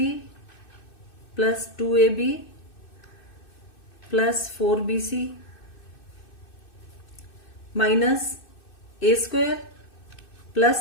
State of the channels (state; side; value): late; right; 2.6 ms